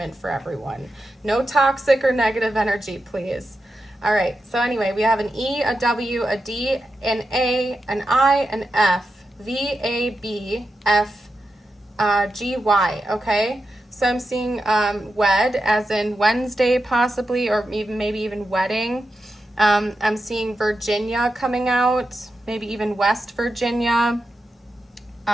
for everyone. No toxic or negative energy, please. All right, so anyway, we have an E, a W, a D, an A, an I, an F, V, A, B, F, G-Y, okay? So I'm seeing wed, as in Wednesday possibly, or even maybe even wedding. I'm seeing Virginia coming out, maybe even West Virginia.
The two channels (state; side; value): normal; both; correlation 0.89